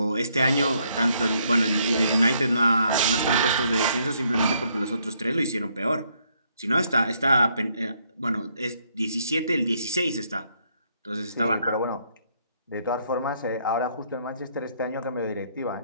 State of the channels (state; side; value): inverted; both; correlation -0.71